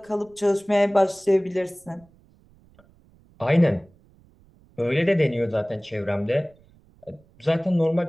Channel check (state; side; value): noise; right; rumble, 30 dB below the sound